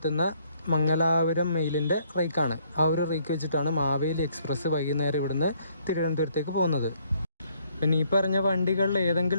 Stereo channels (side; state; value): both; inverted; correlation -0.66